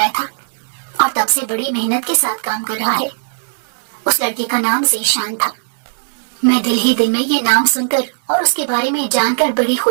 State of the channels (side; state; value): left; silent; 68 dB below the other